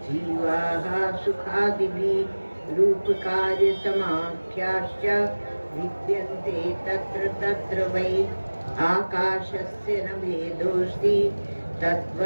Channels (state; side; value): inverted; both; correlation -1.00